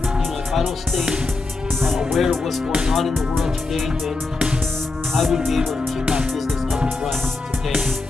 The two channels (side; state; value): right; quieter; 3.5 dB